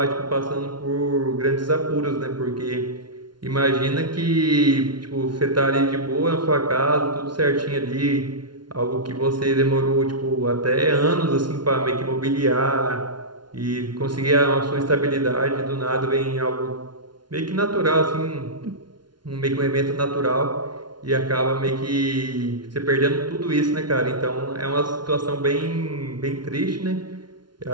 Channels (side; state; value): left; late; 0.71 ms